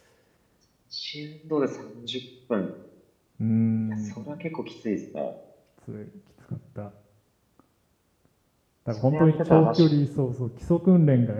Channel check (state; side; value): identical; both; correlation 1.00